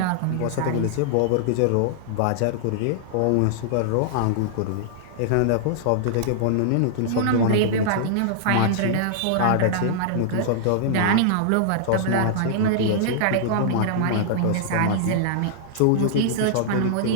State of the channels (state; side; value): different; both; correlation -0.01